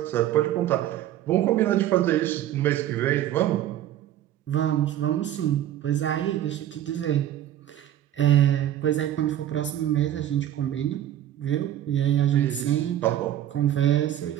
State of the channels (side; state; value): left; quieter; 12.0 dB